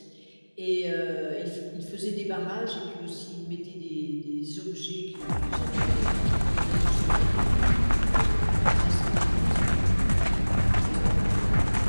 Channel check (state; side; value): inverted; both; correlation -1.00